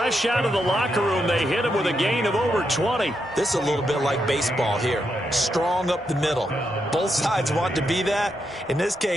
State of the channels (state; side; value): normal; both; correlation 0.82